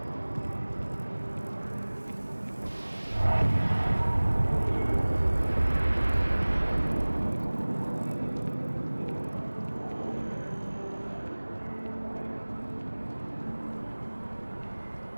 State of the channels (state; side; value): inverted; both; correlation -1.00